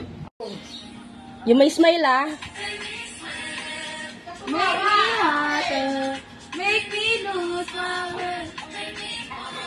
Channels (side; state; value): both; identical; correlation 1.00